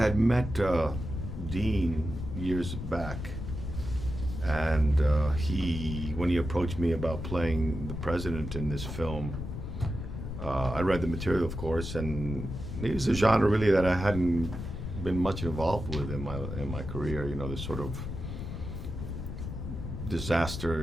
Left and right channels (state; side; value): noise; left; rumble, 6 dB below the sound